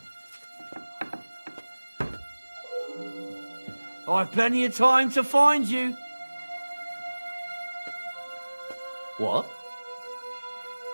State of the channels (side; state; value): both; inverted; correlation -1.00